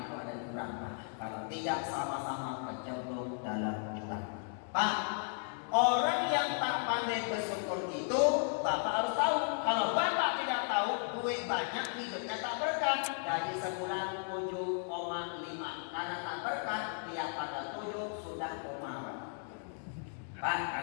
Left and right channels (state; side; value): silent; right; 54 dB below the other